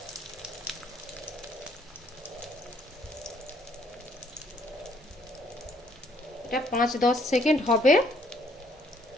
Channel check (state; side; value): normal; both; correlation 0.66